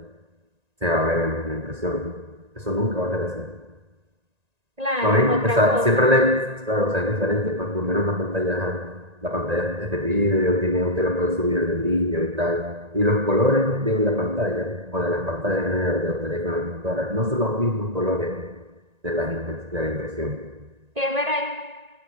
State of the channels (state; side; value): late; left; 1.9 ms